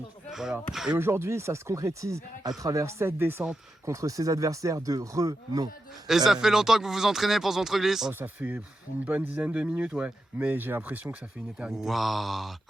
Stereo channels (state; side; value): normal; both; correlation 0.88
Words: Voilà. Et aujourd'hui ça se concrétise à travers cette descente contre ses adversaires de renom. Et ça fait longtemps que vous vous entraînez pour ce ventre-glisse? Oh ça fait une bonne dizaine de minutes ouais, mais j'ai l'impression que ça fait une éternité. Waouh.